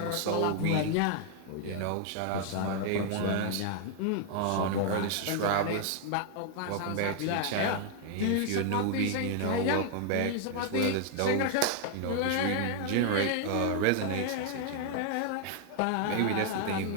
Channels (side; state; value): both; different; correlation 0.00